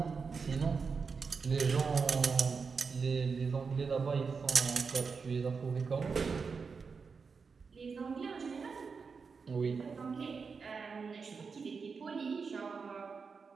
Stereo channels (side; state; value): left; quieter; 5.2 dB